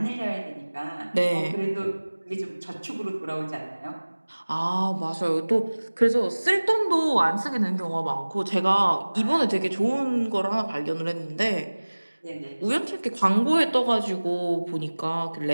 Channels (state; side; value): inverted; both; correlation -1.00